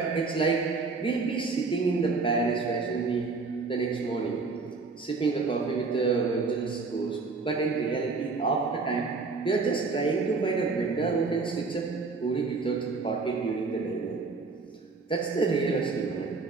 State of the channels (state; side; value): quieter; left; 4.2 dB